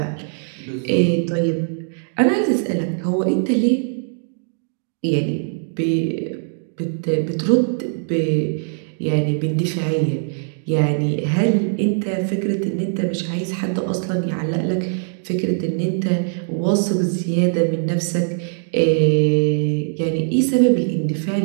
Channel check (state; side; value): silent; left; digital silence